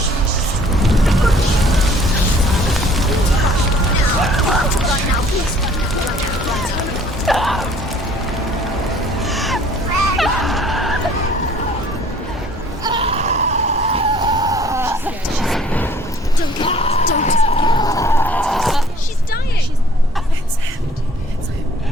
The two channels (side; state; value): both; normal; correlation 0.56